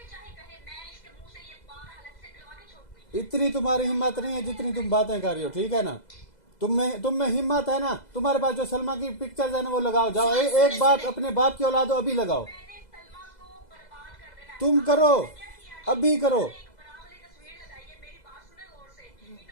चाहे कहे, मैं इसके मुंह से ये बात अलग से करवा के छोड़ूंगी। इतनी तुम्हारी हिम्मत नहीं है जितनी तुम बातें कर रही हो, ठीक है ना। तुम में हिम्मत है ना, तुम्हारे पास जो सलमा की पिक्चर्स है ना वो लगाओ, जाओ, एक बात अपने बाप की औलाद हो, अभी लगाओ, मैंने सलमा को बर्बाद कर देना है। तुम करो, अभी करो। एक बड़ा वाली तस्वीर लगाई है, मेरी बात सुने गौर से।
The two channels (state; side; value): late; right; 2.0 ms